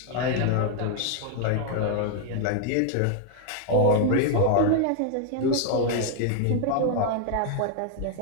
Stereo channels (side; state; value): both; different; correlation 0.00